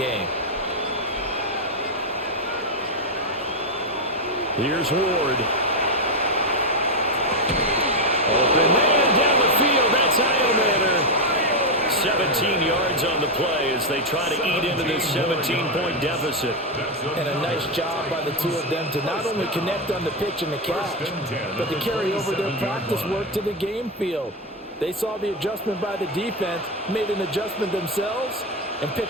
Here's Ward. Open man down the field. That's Iomanner. 17 yards on the play as they try to eat into this 17-point deficit. And a nice job by the two of them to not only connect on the pitch and the catch, but to carry over their practice work to the game field. They saw the adjustment by the defense, made an adjustment themselves, and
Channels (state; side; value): normal; both; correlation 0.06